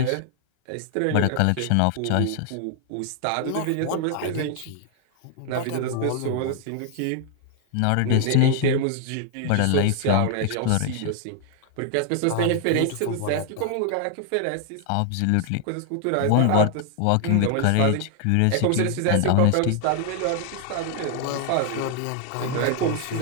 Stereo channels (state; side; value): different; both; correlation 0.00